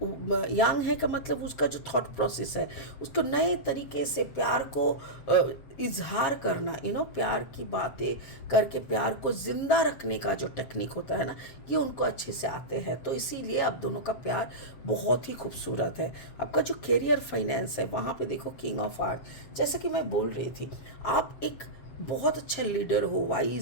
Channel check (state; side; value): late; right; 7.7 ms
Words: यंग है का मतलब उसका जो थॉट प्रोसेस है, उसको नए तरीके से प्यार को इजहार करना, प्यार की बातें करके प्यार को जिंदा रखने का जो टेक्निक होता है ना, ये उनको अच्छे से आते हैं। तो इसीलिए आप दोनों का प्यार बहुत ही खूबसूरत है। आपका जो करियर फाइनेंस है वहाँ पे देखो किंग ऑफ आर्ट, जैसा कि मैं बोल रही थी, आप एक बहुत अच्छा लीडर हो,